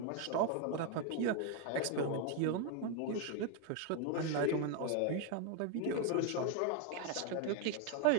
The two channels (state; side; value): different; both; correlation 0.01